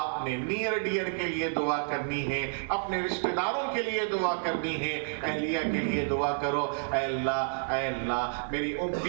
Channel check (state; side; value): silent; left; 58 dB below the other